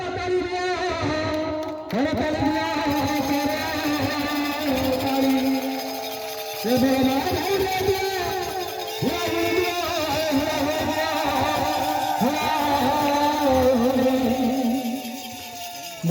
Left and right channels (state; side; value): identical; both; correlation 1.00